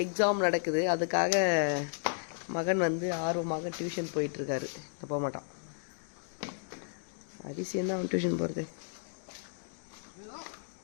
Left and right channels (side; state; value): right; silent; digital silence